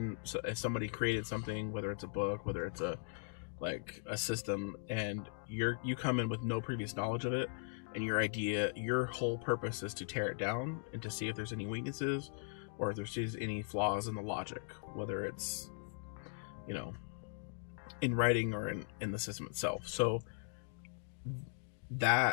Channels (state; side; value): silent; right; digital silence